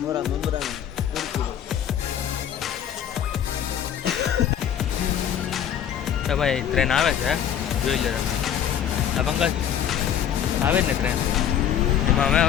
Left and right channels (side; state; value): right; quieter; 9.6 dB